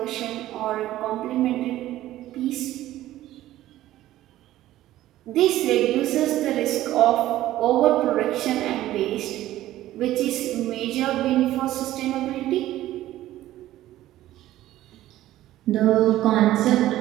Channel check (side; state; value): left; quieter; 14.5 dB